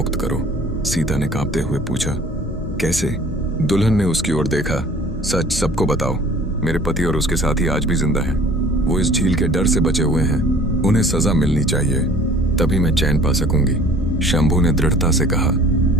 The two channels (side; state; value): both; normal; correlation 0.50